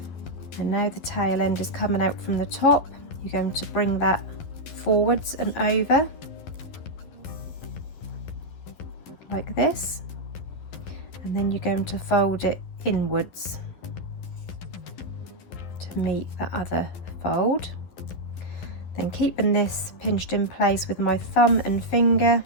And now the tail end is coming out from the top, you're going to bring that forwards and over like this. And then you're going to fold it inwards to meet the other fold. Then keeping this pinched in place with my thumb and finger,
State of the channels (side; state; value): right; late; 11 ms